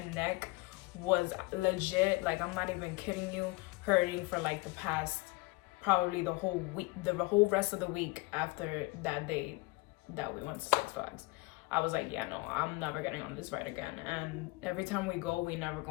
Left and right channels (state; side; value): quieter; right; 23.4 dB